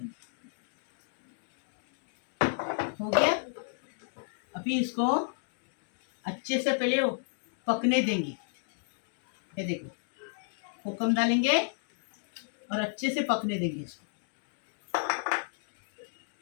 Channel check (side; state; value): right; silent; digital silence